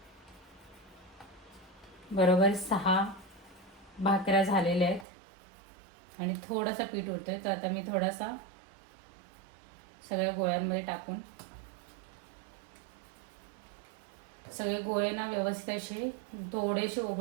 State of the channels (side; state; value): left; drops out; at 5.1 s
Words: बरोबर 6 भाकऱ्या झालेल्या आहेत आणि थोडासा पीठ उरतोय. तर आता मी थोडासा सगळ्या गोळ्यांमध्ये टाकून सगळे गोळे ना व्यवस्थित असे थोडेसे